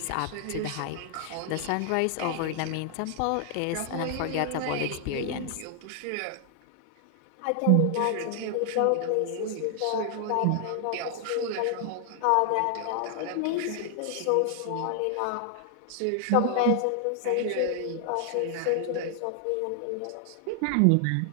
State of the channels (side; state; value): both; different; correlation 0.00